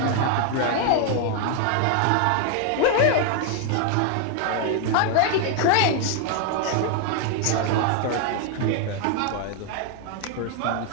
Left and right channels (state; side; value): different; both; correlation 0.01